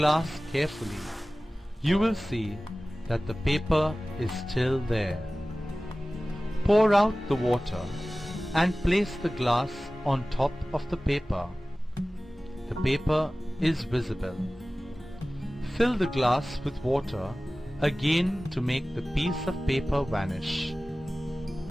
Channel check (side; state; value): both; normal; correlation 0.97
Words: carefully. You will see that the paper is still there. Pour out the water and place the glass on top of the paper. The paper is visible. Fill the glass with water again to make the piece of paper vanish.